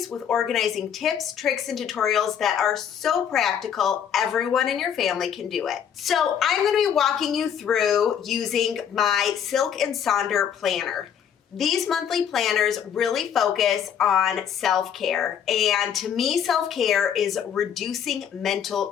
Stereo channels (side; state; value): right; quieter; 8.5 dB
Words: with organizing tips, tricks, and tutorials that are so practical, everyone in your family can do it. So I'm going to be walking you through using my Silk Sonder planner. These monthly planners really focus on self-care, and to me, self-care is reducing mental